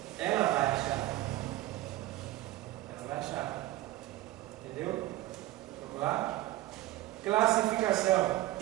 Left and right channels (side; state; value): left; quieter; 16.5 dB